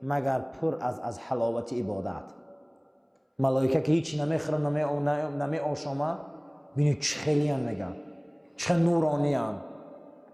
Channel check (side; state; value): both; identical; correlation 1.00